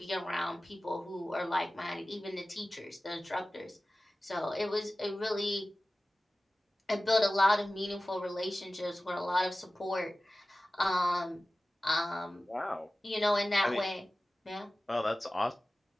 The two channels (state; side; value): normal; both; correlation 0.96